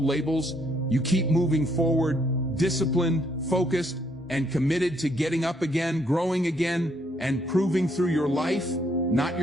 labels, you keep moving forward, disciplined, focused, and committed to getting up again, growing again, and proving through your life, not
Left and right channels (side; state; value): both; normal; correlation 0.71